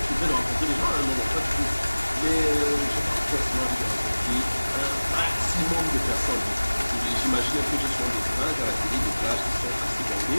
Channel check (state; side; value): inverted; both; correlation -1.00